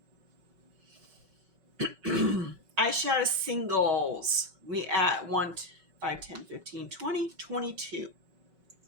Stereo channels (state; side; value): late; left; 5.3 ms